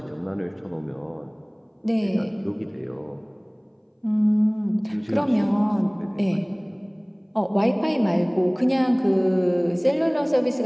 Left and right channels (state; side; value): identical; both; correlation 1.00